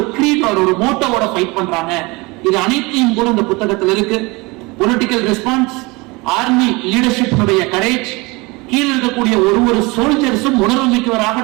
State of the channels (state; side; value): quieter; left; 24.8 dB